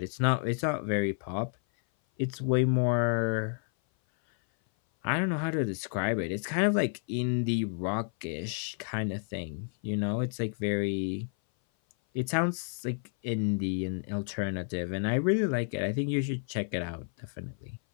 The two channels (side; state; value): right; silent; 56 dB below the other